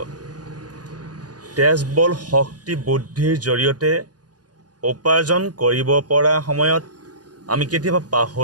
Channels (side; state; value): left; late; 0.69 ms